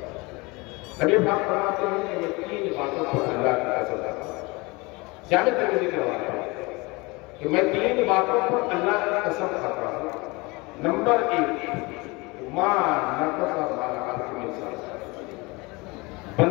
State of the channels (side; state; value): right; quieter; 25.2 dB